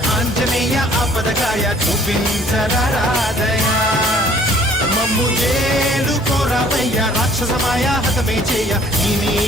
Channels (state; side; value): normal; both; correlation 0.57